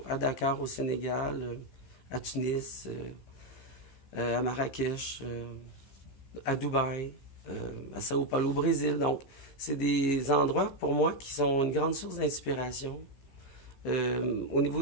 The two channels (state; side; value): late; right; 15 ms